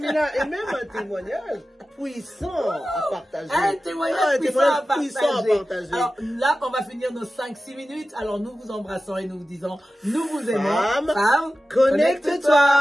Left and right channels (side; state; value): both; normal; correlation 0.94